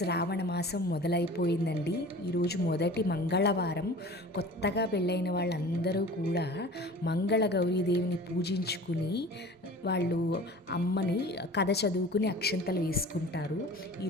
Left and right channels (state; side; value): normal; both; correlation 0.41